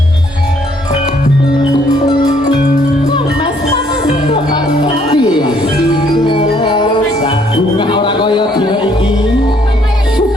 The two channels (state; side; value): normal; both; correlation 0.66